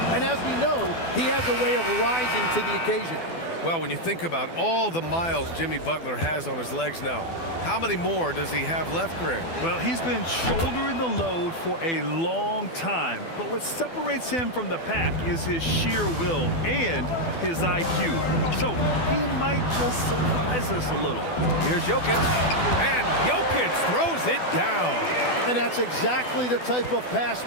And as we know, he has a way of rising to the occasion. Well, when you think about all the miles Jimmy Butler has on his legs now, how many more does he have left, Greg? Well, he's been shouldering the load for a long time, but what separates him from the pack is his sheer will and his IQ. So he might just surprise us a little. Here's Jokic, and Jokic throws it down. And that's exactly the type of pass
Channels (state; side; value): late; right; 12 ms